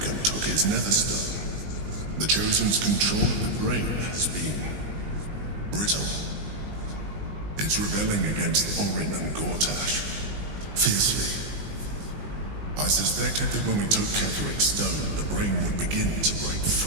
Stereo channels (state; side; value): late; left; 20 ms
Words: and took his netherstone, the Chosen's control of the brain has been brittle. It's rebelling against Orin and Gortash fiercely. I suspected that when we took Ketheric's stone, the brain would begin to break